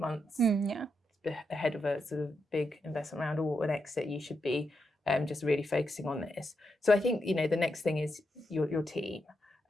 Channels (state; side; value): normal; both; correlation 0.84